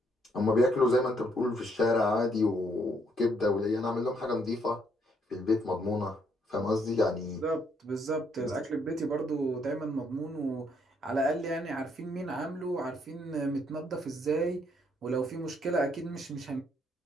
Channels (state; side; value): normal; both; correlation 0.71